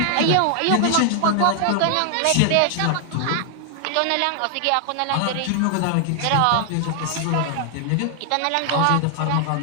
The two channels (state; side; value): different; both; correlation 0.00